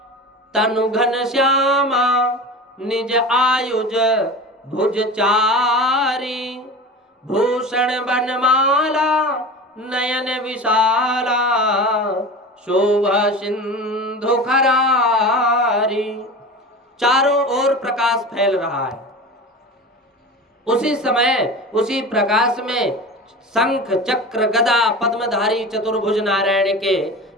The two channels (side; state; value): both; normal; correlation 0.32